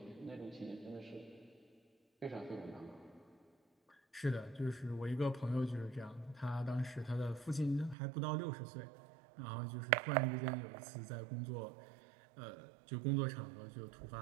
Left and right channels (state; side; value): drops out; left; at 8.0 s